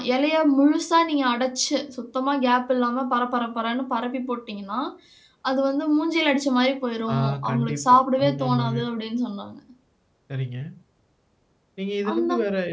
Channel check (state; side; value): identical; both; correlation 1.00